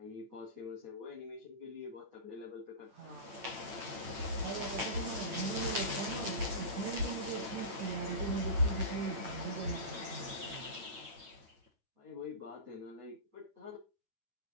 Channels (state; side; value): late; left; 8.7 ms